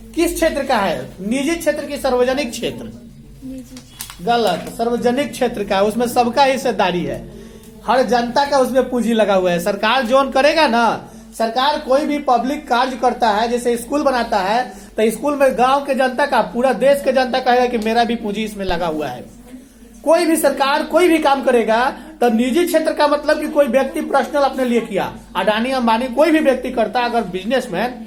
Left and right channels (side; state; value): both; identical; correlation 1.00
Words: किस क्षेत्र का है? निजी क्षेत्र की सार्वजनिक क्षेत्र? गलत। सार्वजनिक क्षेत्र का, उसमें सबका हिस्सेदारी है, हर जनता का उसमें पूंजी लगा हुआ है। सरकार जोन करेगा ना, सरकार कोई भी पब्लिक कार्य करता है, जैसे स्कूल बनाता है, तो स्कूल में गांव के जनता का, पूरा देश के जनता कहेगा कि मेरा भी पूंजी इसमें लगा हुआ है। कोई भी सरकार कोई भी काम करेगा तो निजी क्षेत्र का मतलब कि कोई व्यक्ति पर्सनल अपने लिए किया, अडानी अंबानी कोई भी व्यक्ति करता अगर बिजनेसमैन,